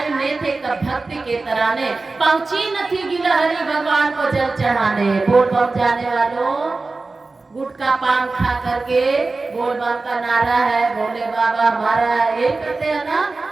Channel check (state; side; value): quieter; left; 3.6 dB